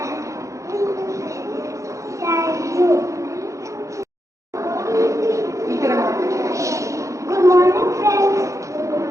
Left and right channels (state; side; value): late; left; 0.15 ms